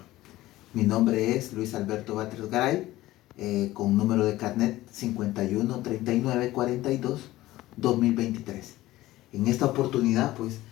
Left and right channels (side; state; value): right; quieter; 16.6 dB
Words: Mi nombre es Luis Alberto Batres Garay, con número de carnet 513942-2023. En esta oportunidad, pues,